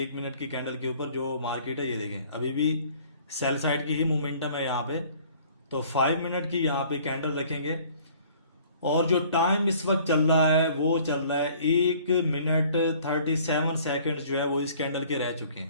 1 मिनट की कैंडल के ऊपर जो मार्केट है, ये देखें अभी भी सेल साइड की ही मोमेंटम है यहाँ पे। तो 5 मिनट की यहाँ पे कैंडल रखेंगे। और जो टाइम इस वक्त चल रहा है वो चल रहा है 1 मिनट 37 सेकेंड जो है वो इस कैंडल के रह चुके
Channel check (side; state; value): both; inverted; correlation -0.54